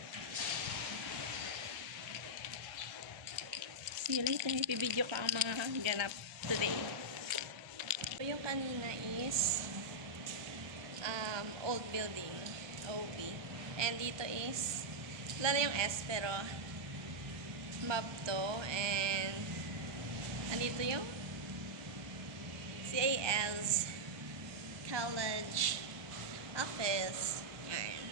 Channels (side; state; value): left; late; 1.3 ms